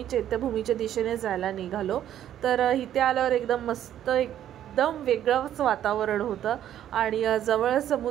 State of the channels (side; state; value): left; quieter; 11.1 dB